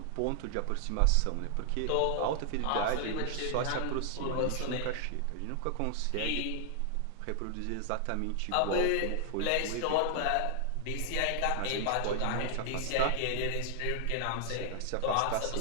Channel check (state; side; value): different; both; correlation 0.00